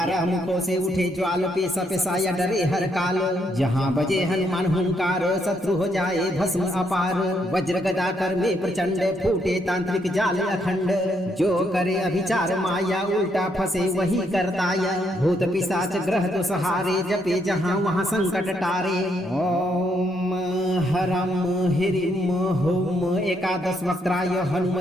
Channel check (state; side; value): normal; both; correlation 0.75